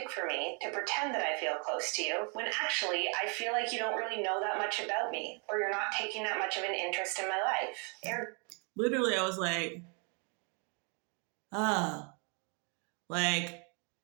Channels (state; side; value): quieter; left; 37.0 dB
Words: for me to pretend that I feel close to you when actually I feel like you don't really know that much about me, or you're not taking that much of an interest in my life. Literally, I was like, like,